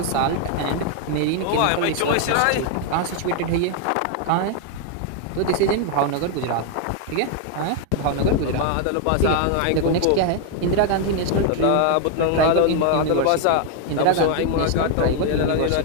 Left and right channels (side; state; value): both; different; correlation 0.00